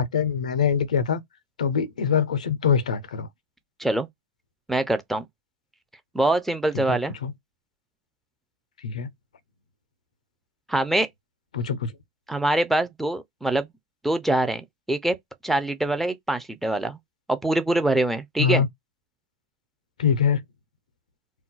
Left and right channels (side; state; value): both; normal; correlation 0.34